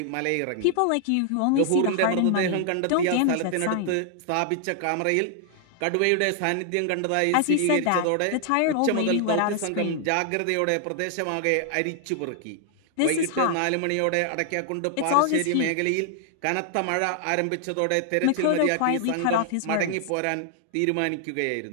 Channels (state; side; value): different; both; correlation 0.00